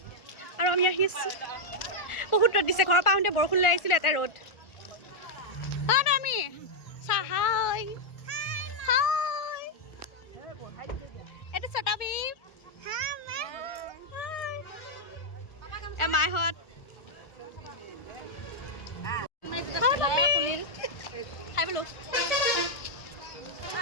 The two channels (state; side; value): late; right; 1.4 ms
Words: আৰু আমি আহি আছোঁ। বহুত ৰ'দ দিছে, ঘৰৰ পৰা আহোঁতে বৰষুণ লৈ আহিছিলোঁ, এটা ৰ'দ। আমি চাহাই এইটো চটাবি মাইহঁত খাই বোলো।